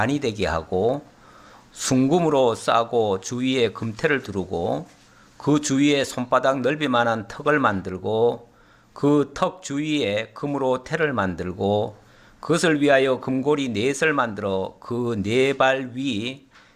되게 하고 순금으로 싸고 주위에 금태를 두르고 그 주위에 손바닥 넓이만한 턱을 만들고 그 턱 주위에 금으로 태를 만들고 그것을 위하여 금고리 넷을 만들어 그 네 발 위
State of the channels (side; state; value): both; identical; correlation 1.00